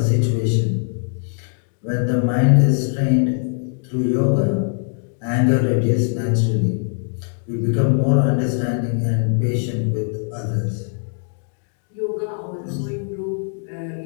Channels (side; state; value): right; silent; 61 dB below the other